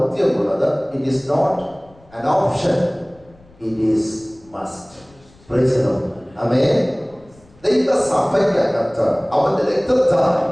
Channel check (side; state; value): left; noise; rumble, 28 dB below the sound